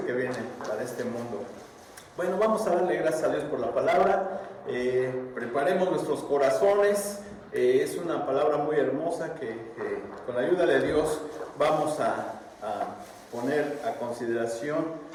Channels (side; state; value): both; identical; correlation 1.00